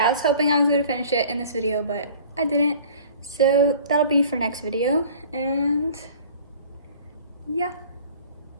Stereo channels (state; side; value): inverted; both; correlation -0.47